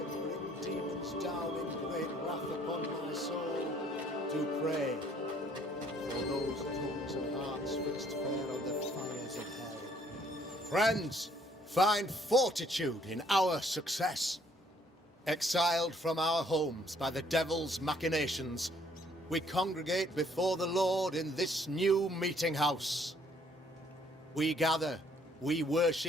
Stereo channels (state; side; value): normal; both; correlation 0.63